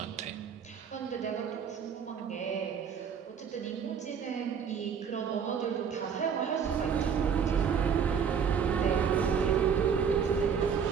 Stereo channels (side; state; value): left; quieter; 7.1 dB